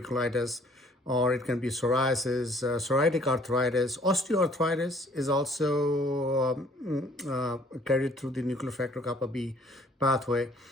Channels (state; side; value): normal; both; correlation 0.58